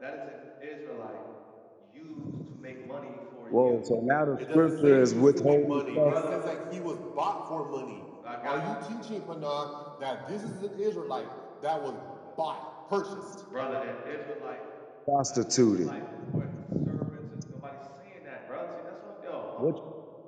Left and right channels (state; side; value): identical; both; correlation 1.00